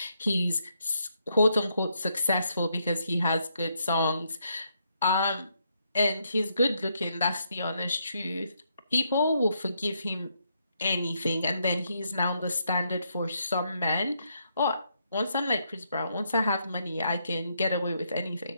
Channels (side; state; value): both; inverted; correlation -0.77